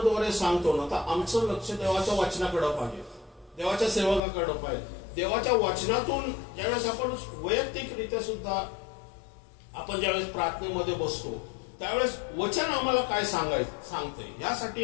सांगतो ना, तर आमचं लक्ष देवाच्या वचनाकडे पाहिजे, देवाच्या सेवकाकडे पाहिजे. देवाच्या वचनातून ज्यावेळेस आपण वैयक्तिकरित्या सुद्धा आपण ज्यावेळेस प्रार्थनेमध्ये बसतो, त्यावेळेस वचन आम्हाला काय सांगतंय, यासाठी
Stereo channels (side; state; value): right; drops out; at 4.2 s